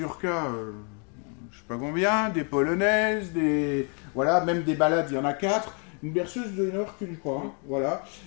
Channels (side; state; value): right; quieter; 38.5 dB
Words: je ne sais pas combien, des polonaises, voilà, même des ballades, il y en a 4. Une berceuse de 1 heure qu'une, crois. Hein, voilà.